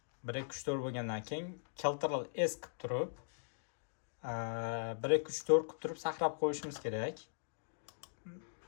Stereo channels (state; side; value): silent; right; digital silence